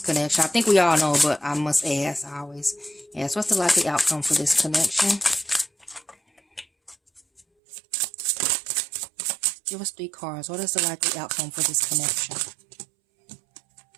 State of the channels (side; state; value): left; drops out; at 7.5 s